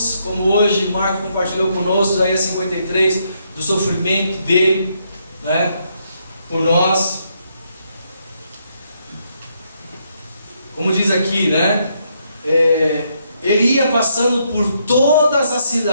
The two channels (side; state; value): both; inverted; correlation -0.76